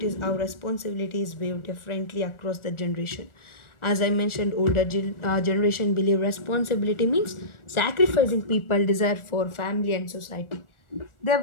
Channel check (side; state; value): right; late; 1.4 ms